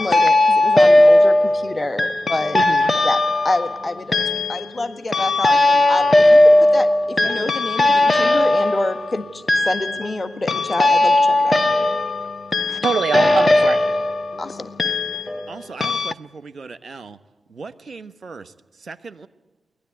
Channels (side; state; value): both; normal; correlation 0.94